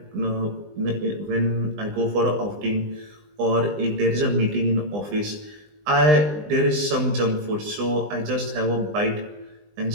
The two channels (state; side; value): late; left; 20 ms